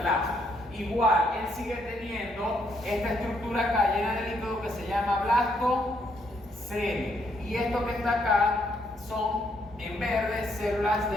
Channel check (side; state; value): both; normal; correlation 0.73